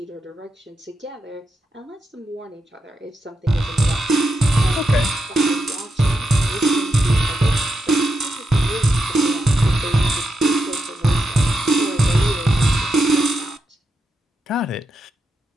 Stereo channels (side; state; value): both; normal; correlation 0.86